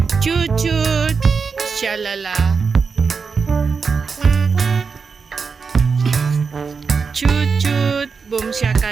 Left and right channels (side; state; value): left; quieter; 5.3 dB